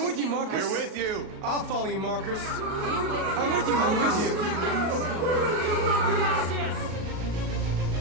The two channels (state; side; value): late; left; 38 ms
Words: with you, Marcus. We're with you. I'll follow you, Marcus. We're with you. I'm with you. I'm with you. I'm with